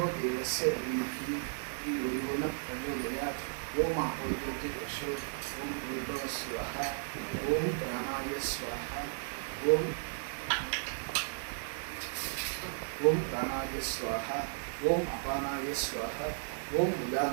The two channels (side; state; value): left; silent; 55 dB below the other